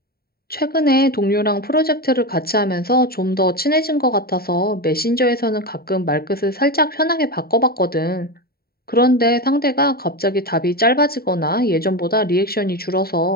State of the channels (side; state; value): right; late; 0.45 ms